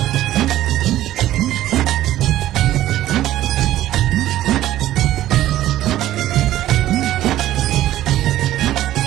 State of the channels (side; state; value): left; quieter; 13.9 dB